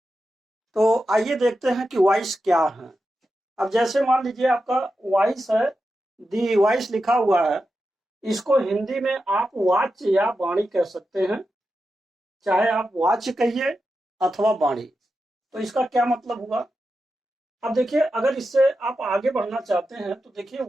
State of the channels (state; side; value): normal; both; correlation 0.90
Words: तो आइए देखते हैं कि वॉइस क्या है। अब जैसे मान लीजिए आपका वॉइस है, दी वॉइस लिखा हुआ है। इसको हिंदी में आप वाच्य या वाणी कह सकते हैं, चाहे आप वाच्य कहिए अथवा वाणी। तो इसका क्या मतलब हुआ। अब देखिए, अगर इससे आप आगे बढ़ना चाहते हैं तो देखिए